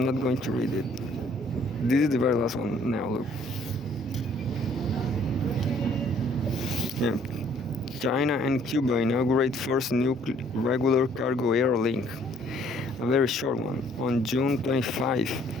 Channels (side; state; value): both; normal; correlation 0.61